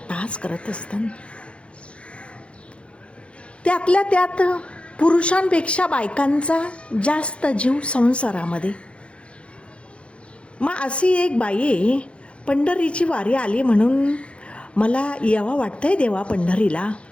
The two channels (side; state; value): right; late; 0.059 ms